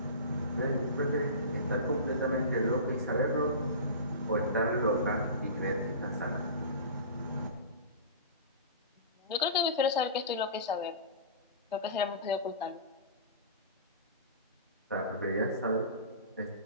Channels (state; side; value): inverted; both; correlation -0.32